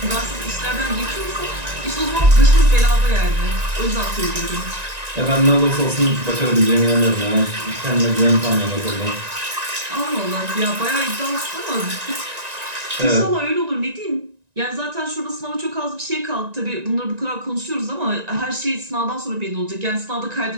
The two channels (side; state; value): left; late; 1.9 ms